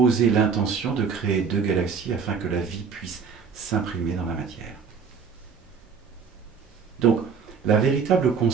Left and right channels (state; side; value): quieter; left; 5.9 dB